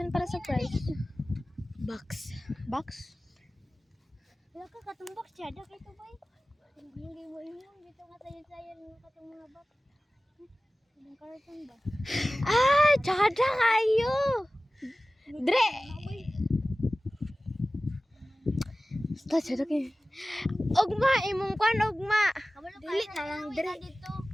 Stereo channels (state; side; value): normal; both; correlation 0.97